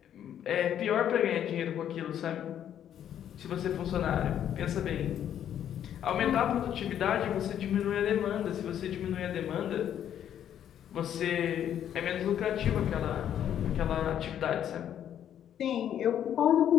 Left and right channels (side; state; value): right; quieter; 10.0 dB